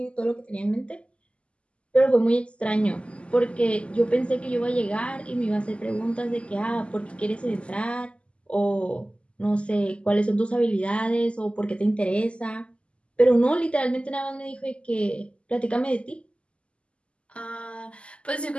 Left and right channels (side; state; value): right; late; 0.056 ms